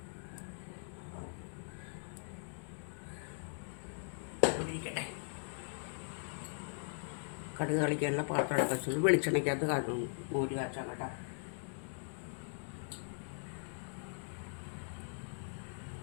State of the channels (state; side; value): silent; right; digital silence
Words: ഇരിക്കട്ടെ. കടുക് കളിക്കാനുള്ള പാത്രം വെച്ചത് വെളിച്ചെണ്ണയ്ക്കകത്ത് കാട്ടുന്നു. മോര് കാച്ചാൻ കേട്ടോ.